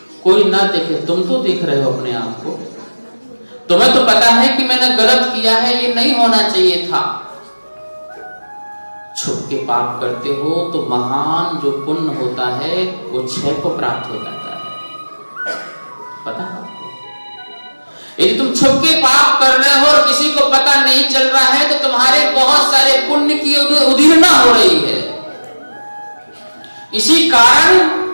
कोई ना देखे, तुम तो देख रहे हो अपने आप को। तुम्हें तो पता है कि मैंने गलत किया है, ये नहीं होना चाहिए था। छुप के पाप करते हो तो महान जो पुण्य होता है वो क्षय को प्राप्त हो जाता है, पता है आपको? यदि तुम छुप के पाप कर रहे हो और किसी को पता नहीं चल रहा है तो तुम्हारे बहुत सारे पुण्य की उदीर्णा हो रही है। इसी कारण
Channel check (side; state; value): both; inverted; correlation -1.00